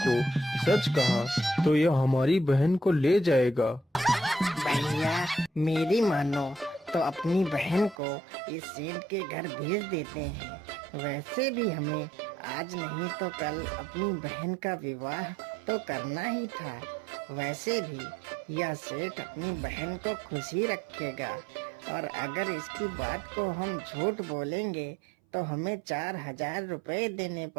सच कहा तो यह हमारी बहन को ले जाएगा। भैया, मेरी मानो तो अपनी बहन को इस सेठ के घर भेज देते हैं। वैसे भी हमें आज नहीं तो कल अपनी बहन का विवाह तो करना ही था। वैसे भी यह सेठ अपनी बहन को खुशी रखेगा, और अगर इसकी बात को हम झूठ बोलेंगे तो हमें 4,000 रुपए देने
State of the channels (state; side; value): drops out; left; at 8.0 s